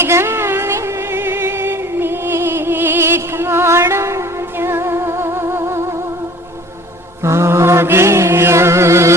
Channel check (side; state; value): both; normal; correlation 0.47